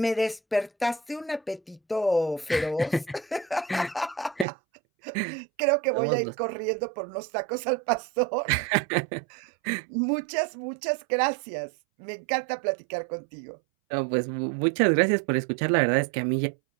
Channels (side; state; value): left; drops out; at 4.5 s